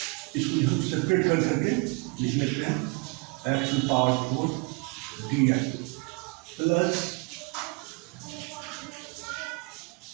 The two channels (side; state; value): left; quieter; 29.5 dB